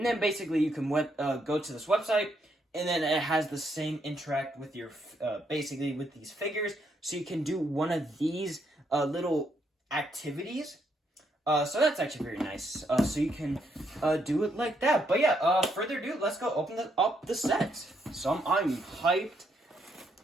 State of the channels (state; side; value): normal; both; correlation 0.75